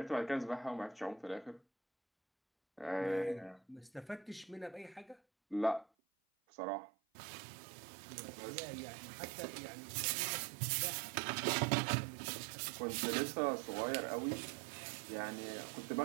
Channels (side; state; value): left; drops out; at 5.9 s